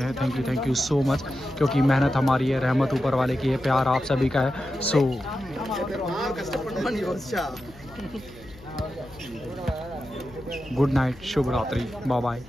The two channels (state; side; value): noise; left; hum, 22 dB below the sound